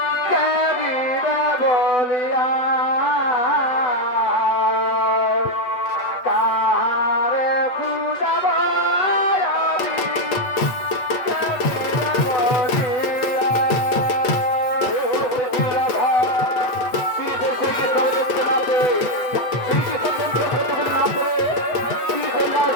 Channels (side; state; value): right; late; 8.7 ms